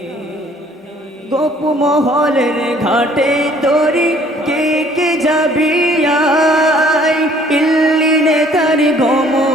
গোপ মহলের ঘাটে তোরি কে কে যাবি আয় ইল্লিনে তার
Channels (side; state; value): both; normal; correlation 0.58